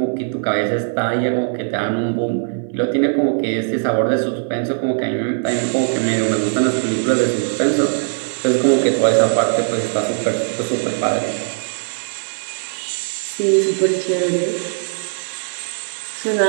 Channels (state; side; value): silent; left; 60 dB below the other